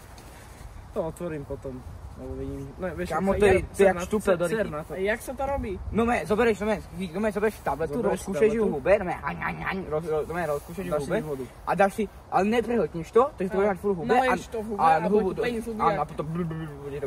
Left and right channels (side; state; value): both; identical; correlation 1.00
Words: To otvorím potom. Lebo vidím. No, vieš, Kamo, to je jak štúpel do ryky. A jak sa to robí? No me, zoberieš tabletu, rozkúšeš ju v hube, rozkúšeš ju v hube a dáš si, ale neprehltneš to, takže to bude mať furt v hube naleješ to v hube a bude zuby a potom bude to